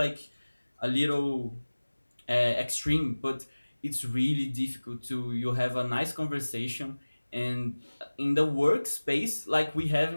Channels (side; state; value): both; inverted; correlation -1.00